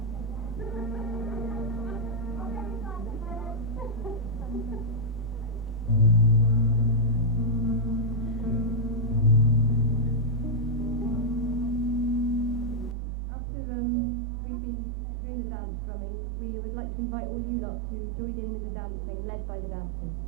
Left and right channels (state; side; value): drops out; left; at 13.0 s